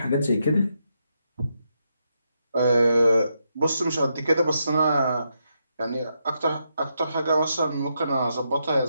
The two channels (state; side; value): inverted; both; correlation -0.82